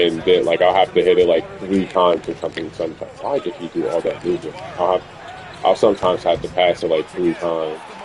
then like I'll have to hit it like 3 times or something. Sometimes why did he do all that movement? I'll sometimes have to pass it like 3 times.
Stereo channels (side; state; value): both; identical; correlation 1.00